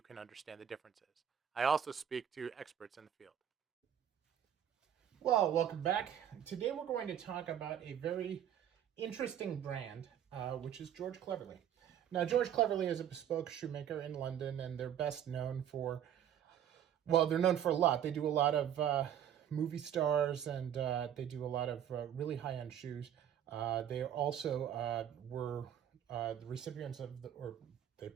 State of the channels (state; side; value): quieter; left; 9.8 dB